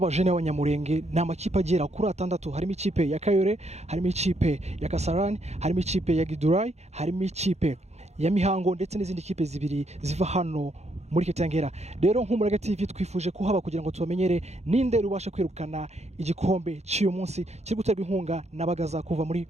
b'Abanyamulenge n'amakipe agera kuri 6 harimo ikipe ya Kayore, harimo ikipe ya Kasarani, harimo ikipe ya Gidurai, harimo ikipe ya Mihango ndetse n'izindi kipe zibiri ziva hano muri Kitengera. Rero nk'Umurage TV twifuje kuhaba kugira ngo tubamenyere ninde rubasha kwirukana igikombe cy'uyu munsi kiri guterwa inkunga na Bagaza kuva muri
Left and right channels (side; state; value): left; late; 0.32 ms